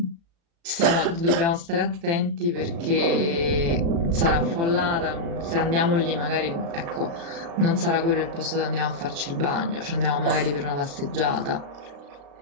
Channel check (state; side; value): late; left; 35 ms